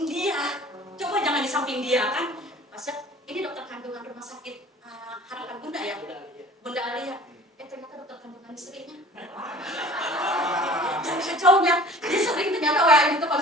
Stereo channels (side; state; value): both; normal; correlation 0.45